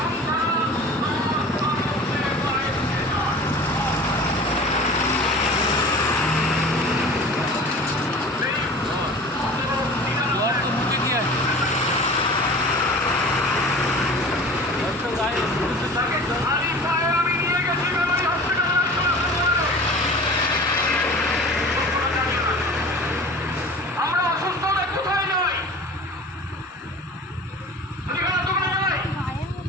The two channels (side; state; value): both; normal; correlation 0.40